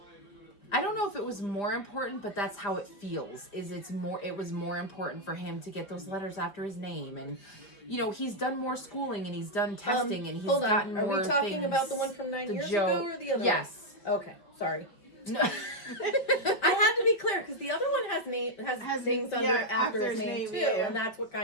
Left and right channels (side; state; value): right; late; 5.0 ms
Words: I don't know if it was more important, but that's how it feels. It was more important for him to get those letters after his name, and he's done more schooling and he's done testing and he's Hold on. gotten Are more we talking things. about the one from 9 the years Joe- ago or the other Yes. one? Okay, sorry. No. I had to be clear because the other one has things under after his name too, yeah. and that's what